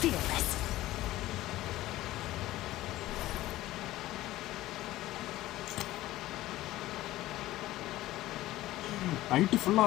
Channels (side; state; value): right; quieter; 16.1 dB